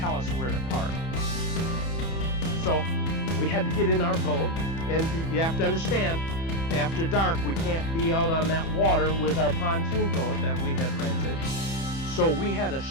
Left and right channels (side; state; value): right; late; 30 ms